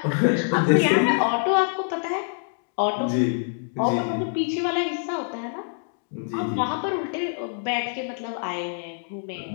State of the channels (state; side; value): silent; right; 62 dB below the other